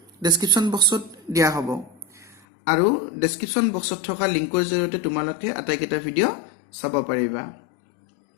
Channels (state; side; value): drops out; right; at 2.4 s